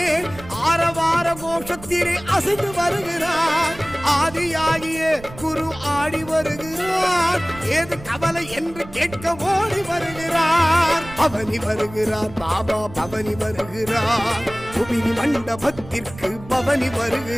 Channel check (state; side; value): noise; right; rumble, 17 dB below the sound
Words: ஆரவார கோஷத்திலே அசைந்து வருகிறார். ஆதியாகிய குரு ஆடி வருகிறார். ஏது கவலை என்று கேட்க ஓடி வருகிறார். பவனி வருகிறார் பாபா, பவனி வருகிறார். புவினி மண்டபத்திற்கு பவனி